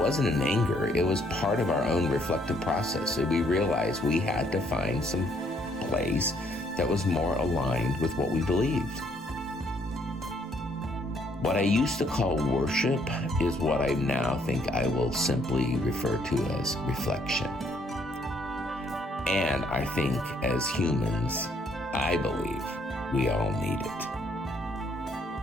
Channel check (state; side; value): normal; both; correlation 0.67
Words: in anger. It was part of our own reflective process. So we realized we had to find some place that was more aligned with what we believed. What I used to call worship is what I now think I will simply refer to as reflection. And I think as humans, I believe we all need it.